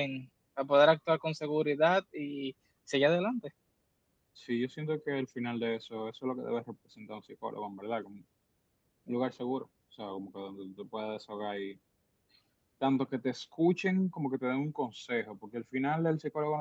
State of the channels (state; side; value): identical; both; correlation 1.00